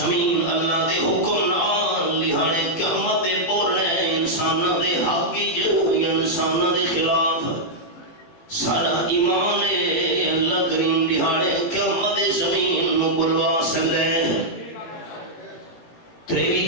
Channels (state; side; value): late; right; 18 ms